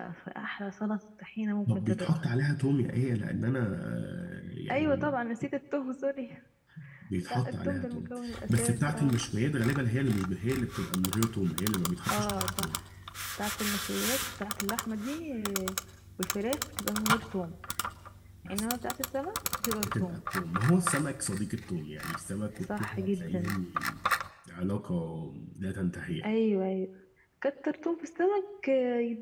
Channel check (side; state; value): both; identical; correlation 1.00